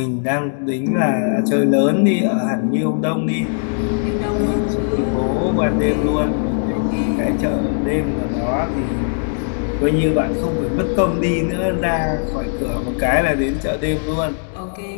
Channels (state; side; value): silent; right; digital silence